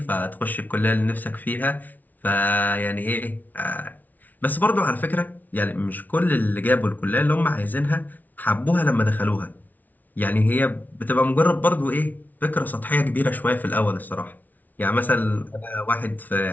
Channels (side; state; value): right; late; 0.079 ms